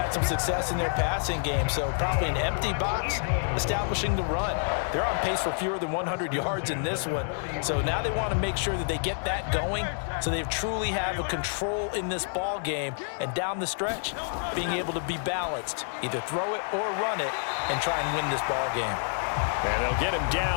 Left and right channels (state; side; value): silent; right; 59 dB below the other